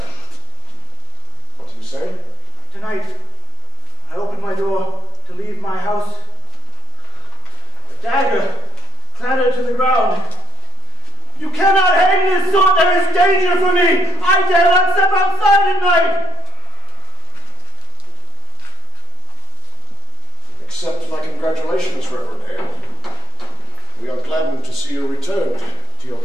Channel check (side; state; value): both; normal; correlation 0.46